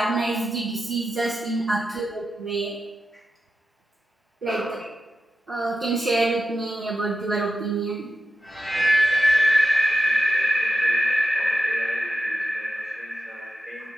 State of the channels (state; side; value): normal; both; correlation 0.91